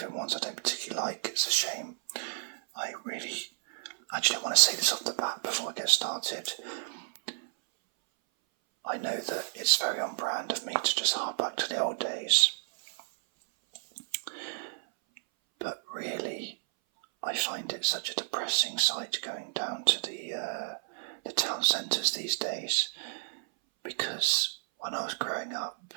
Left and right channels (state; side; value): silent; left; 57 dB below the other